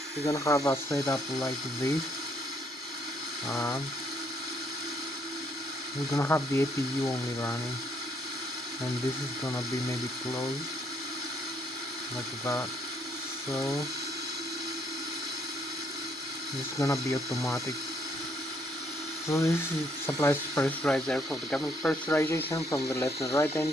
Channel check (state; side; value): normal; both; correlation 0.70